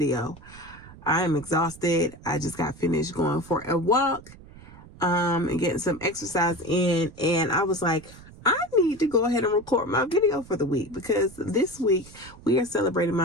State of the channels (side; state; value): right; noise; rumble, 20 dB below the sound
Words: I am exhausted. I just got finished going for a walk and getting some exercise in, and I was like, I need to go ahead and record my video for the week because this week we are celebrating